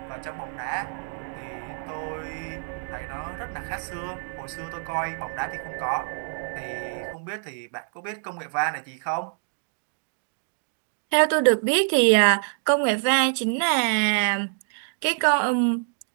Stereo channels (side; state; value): left; silent; 60 dB below the other